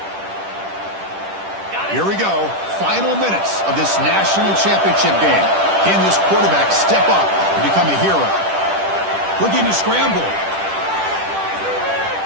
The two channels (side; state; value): left; late; 10 ms